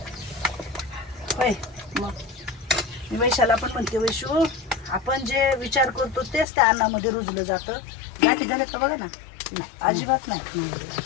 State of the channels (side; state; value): right; drops out; at 6.5 s